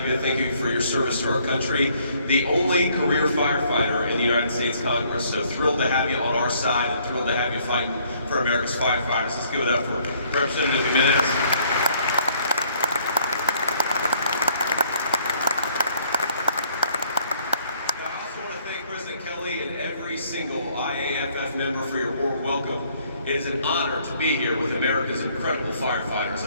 you. Thank you for your service to our country. The only career firefighter in the United States Congress. So thrilled to have you on our side and thrilled to have you fighting for America's firefighters. Let's give it up for Representative Jimenez. Single IAFF member for your warm welcome. It is an honor to be here with America's incredible firefighters,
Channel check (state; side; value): inverted; both; correlation -0.64